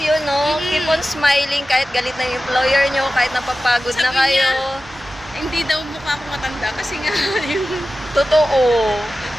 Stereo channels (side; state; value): both; normal; correlation 0.94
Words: yun, no? Keep on smiling kahit galit na yung employer nyo, kahit napapagod na Sabi kayo. niya, hindi daw mukha akong matanda kasi nga yung Totoo.